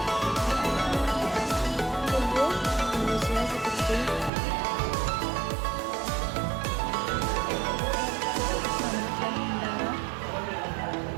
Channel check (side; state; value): left; drops out; at 4.3 s